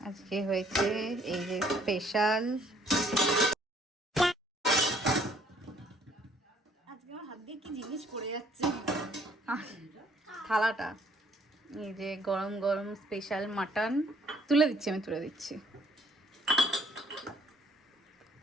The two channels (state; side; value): normal; both; correlation 0.62